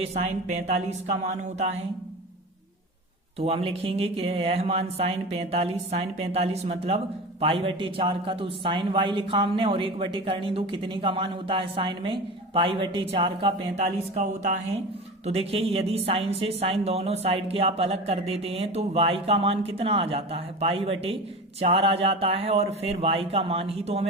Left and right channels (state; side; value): normal; both; correlation 0.30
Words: साइन 45 का मान होता है। तो हम लिखेंगे कि यह मान साइन 45 मतलब π/4 का, तो साइन y लिखा हमने, और 1/2 कितने का मान होता है साइन में, π/4 का 45 का होता है। तो देखिए यदि साइन से साइन दोनों साइड के आप अलग कर देते हैं तो y का मान कितना आ जाता है, π/4 आ जाता है। और फिर y का मान ही तो